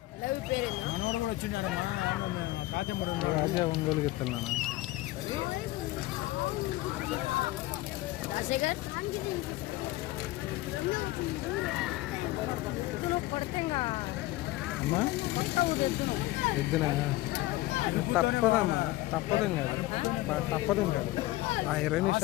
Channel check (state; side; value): quieter; right; 17.9 dB